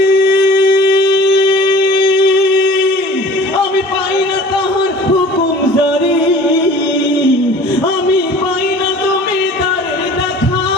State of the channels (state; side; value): normal; both; correlation 0.45